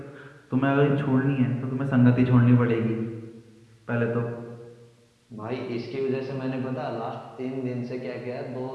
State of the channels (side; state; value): both; identical; correlation 1.00